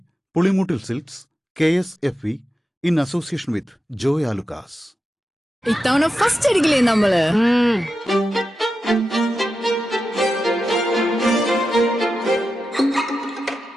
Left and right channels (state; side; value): normal; both; correlation 0.90